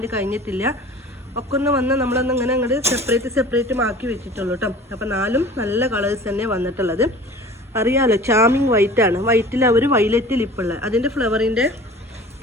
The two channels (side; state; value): both; normal; correlation 0.43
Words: കഴിഞ്ഞിട്ടില്ല, ഒക്കെ ഒന്ന് വന്ന് നമ്മളൊന്ന് ഇങ്ങനെ അങ്ങോട്ട് സെപ്പറേറ്റ് ആക്കി വെച്ചിട്ടുള്ളൂ കേട്ടോ. അപ്പോൾ 4 നല്ല കളേഴ്സ് തന്നെ വന്നിട്ടുള്ളത്. അറിയാമല്ലോ, ചാമിങ് വൈറ്റാണ്. വൈറ്റിൽ അവർ വൈലറ്റ് ലിപ്പുള്ള അതിൻ്റെ ഫ്ലവറിൻ്റെ